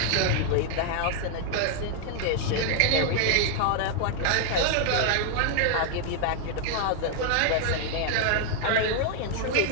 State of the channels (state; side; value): different; both; correlation 0.00